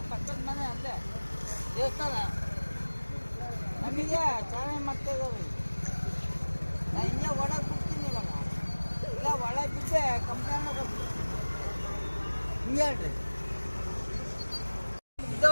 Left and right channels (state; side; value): inverted; both; correlation -1.00